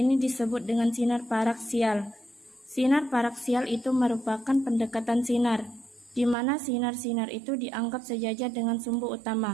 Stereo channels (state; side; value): drops out; left; at 6.4 s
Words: disebut dengan sinar paraksial. Sinar paraksial itu merupakan pendekatan sinar, di mana sinar-sinar itu dianggap sejajar dengan sumbu